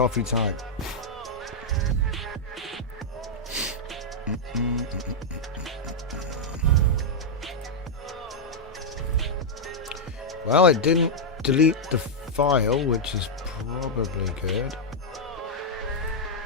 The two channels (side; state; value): both; normal; correlation -0.05